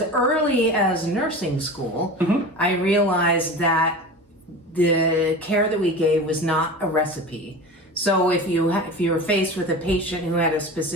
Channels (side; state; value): both; normal; correlation 0.32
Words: early as nursing school, I realized that the care that we gave was not a recipe. So if you were faced with a patient who had a